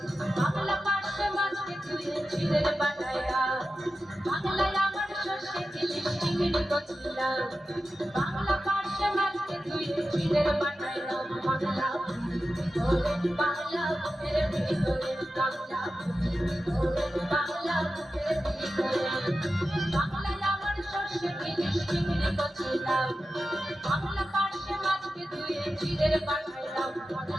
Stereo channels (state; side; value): normal; both; correlation 0.92